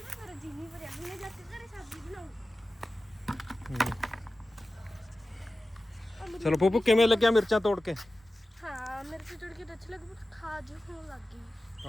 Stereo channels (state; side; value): normal; both; correlation 0.95